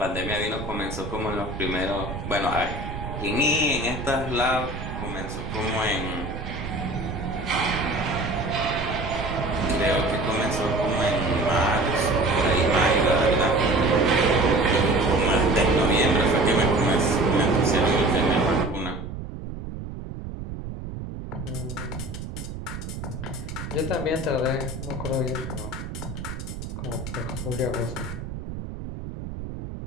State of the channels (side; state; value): right; noise; rumble, 8 dB below the sound